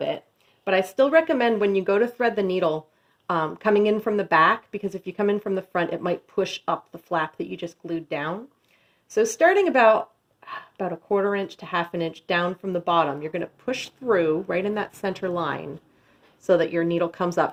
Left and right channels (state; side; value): identical; both; correlation 1.00